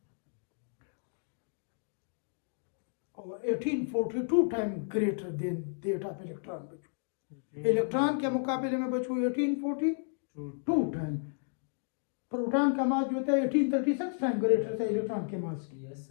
और 1842 time greater than that of electron बच्चों, इलेक्ट्रॉन के मुकाबले में बच्चों 1842 टाइम प्रोटॉन का मास जो होता है 1836 टाइम ग्रेटर होता है इलेक्ट्रॉन के मास की, यस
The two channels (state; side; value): silent; right; digital silence